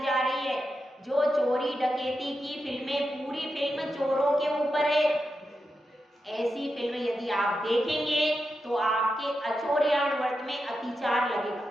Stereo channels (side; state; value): both; normal; correlation 0.88